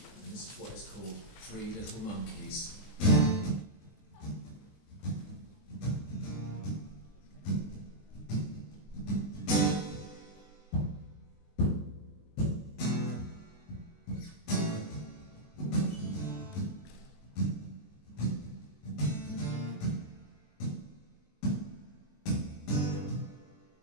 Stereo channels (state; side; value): late; right; 20 ms